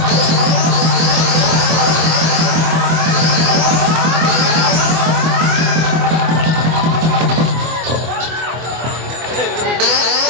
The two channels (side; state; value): left; late; 24 ms